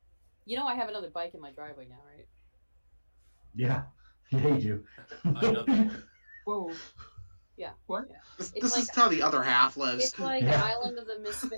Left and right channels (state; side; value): inverted; both; correlation -1.00